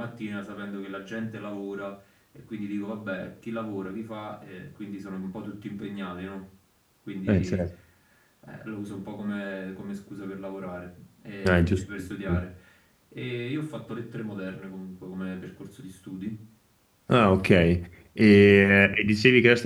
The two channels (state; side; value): identical; both; correlation 1.00